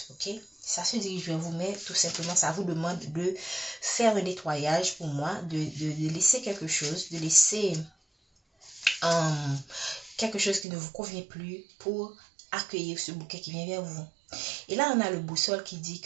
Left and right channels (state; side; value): drops out; left; at 10.7 s